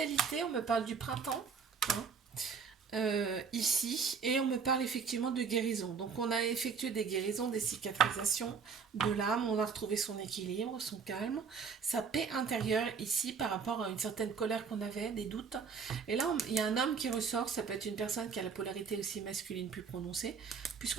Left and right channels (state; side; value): quieter; left; 5.8 dB